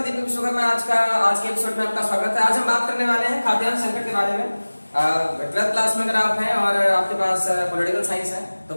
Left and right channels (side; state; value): both; inverted; correlation -1.00